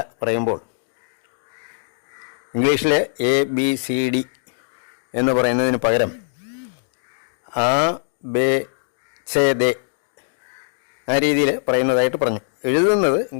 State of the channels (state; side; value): silent; right; digital silence